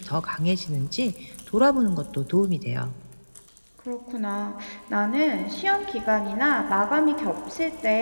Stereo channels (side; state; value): both; inverted; correlation -1.00